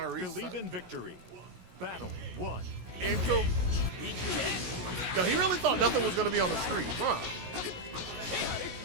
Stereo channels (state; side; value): late; left; 17 ms